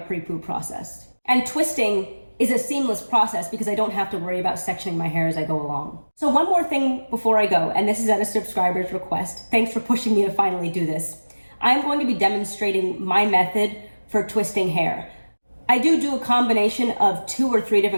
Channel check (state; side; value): inverted; both; correlation -1.00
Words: process. And twisting is a seamless process because I don't have to worry about sectioning my hair as I go along. So one more thing before I go, and this is at a subscriber's request. Thanks for pushing me to finally do this. I'm going to be demonstrating my method for twisting hair. I do a combination of 2 or 3